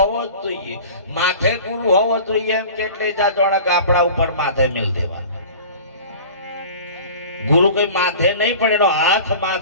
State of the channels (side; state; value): both; inverted; correlation -0.39